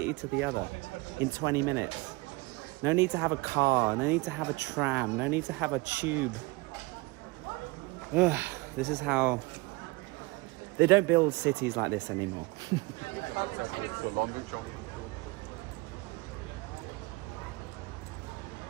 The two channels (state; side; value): quieter; left; 23.8 dB